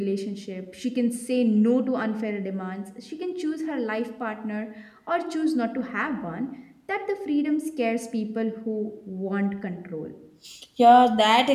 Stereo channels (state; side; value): identical; both; correlation 1.00